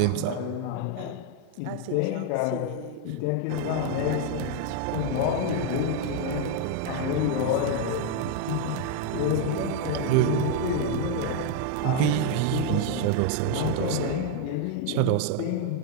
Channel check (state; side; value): different; both; correlation 0.01